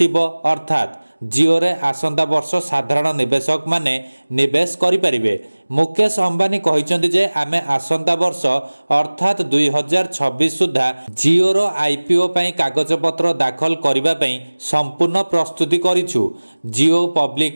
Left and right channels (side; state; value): both; inverted; correlation -1.00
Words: अर्थात जिओ रे आसंता वर्ष साधारण निवेशक माने निवेश करि परिबे। मुकेश अंबानी कहिसेंती जे आमे आसंता वर्ष अर्थात 2026 सुधा जिओ रो आईपीओ पई कागज पत्र दाखल करिबा पई संपूर्ण प्रस्तुति करिछु। जिओ